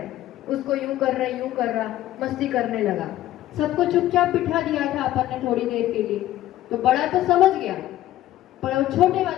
हैं, उसको यूं कर रहे, यूं कर रहा, मस्ती करने लगा। सबको चुपचाप बिठा दिया था अपन ने थोड़ी देर के लिए, तो बड़ा तो समझ गया, पर वो छोटे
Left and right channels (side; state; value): right; quieter; 14.1 dB